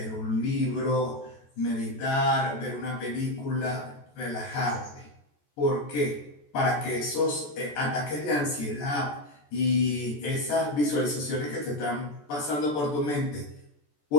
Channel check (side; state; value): right; late; 14 ms